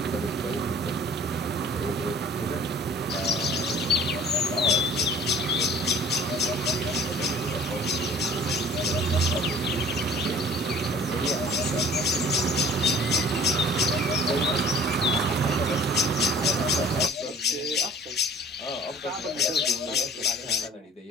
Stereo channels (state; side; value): normal; both; correlation 0.49